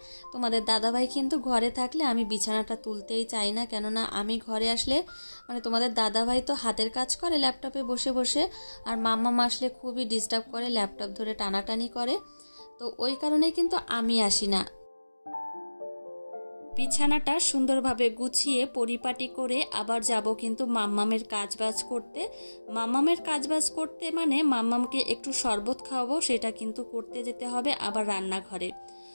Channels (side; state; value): both; inverted; correlation -1.00